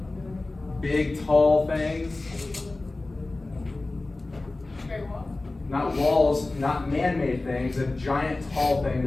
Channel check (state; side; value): quieter; right; 3.1 dB